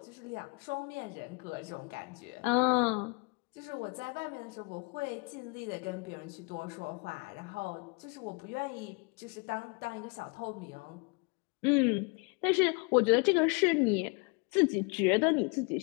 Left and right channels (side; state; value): right; quieter; 32.4 dB